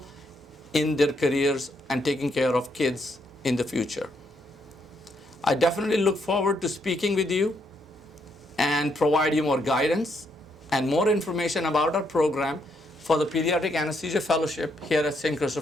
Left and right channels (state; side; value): normal; both; correlation 0.75